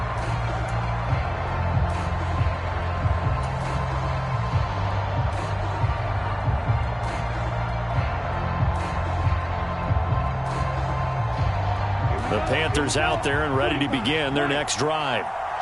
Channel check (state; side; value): identical; both; correlation 1.00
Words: The Panthers out there and ready to begin their next drive.